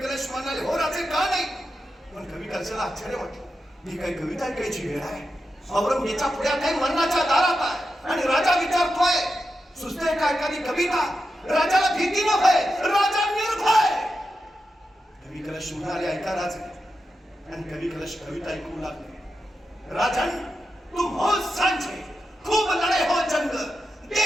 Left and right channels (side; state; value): both; normal; correlation 0.89